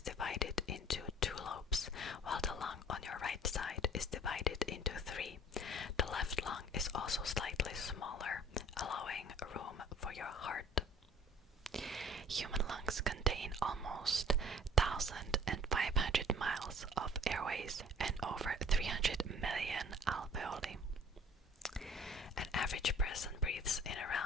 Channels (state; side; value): normal; both; correlation 0.50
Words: divided into 2 lobes, while the lung on your right side is divided into 3. The left lung is also slightly smaller, allowing room for your heart. Human lungs contain almost 1,500 miles of airways and over 300 million alveoli. An average person breathes in